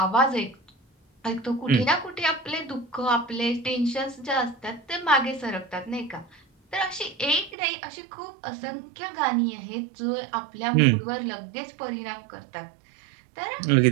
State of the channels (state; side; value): drops out; left; at 7.6 s